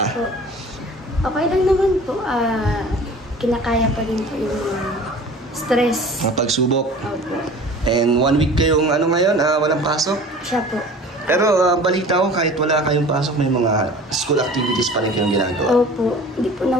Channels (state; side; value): normal; both; correlation 0.43